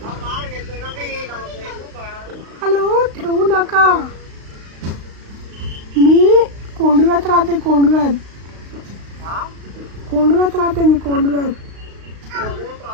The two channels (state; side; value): late; left; 35 ms